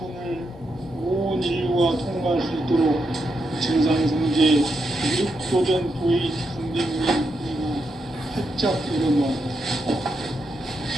온 인류가 통과할 수 있도록 증산성제 미륵도전 도의 강대문이 활짝 열어놓았다.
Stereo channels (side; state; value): both; normal; correlation 0.83